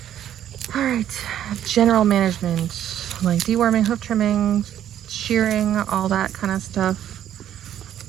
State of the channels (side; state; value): left; quieter; 10.9 dB